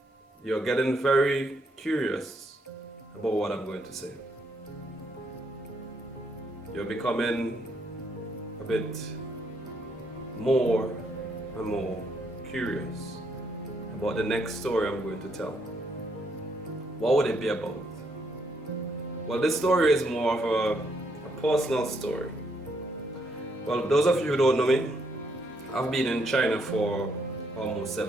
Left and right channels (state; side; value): normal; both; correlation 0.74